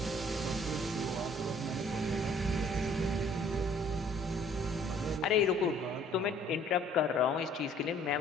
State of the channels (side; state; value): both; normal; correlation 0.57